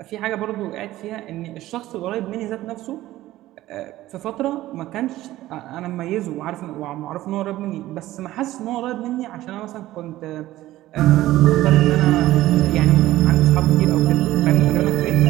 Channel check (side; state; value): left; quieter; 15.6 dB